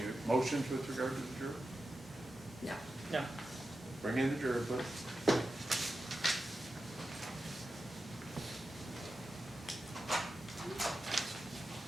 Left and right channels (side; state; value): both; normal; correlation 0.91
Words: motions with regard to the juror? No. No. Bring in the juror, please.